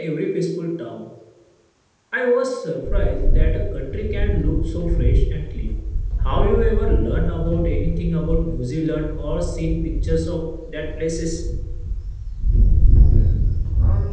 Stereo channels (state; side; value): identical; both; correlation 1.00